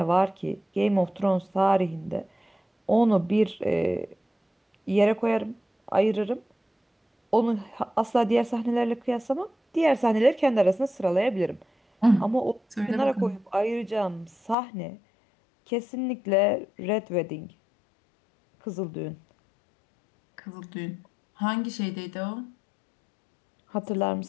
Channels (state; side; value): drops out; right; at 14.6 s